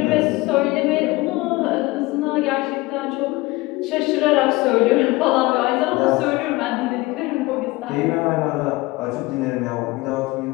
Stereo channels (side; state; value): right; quieter; 21.2 dB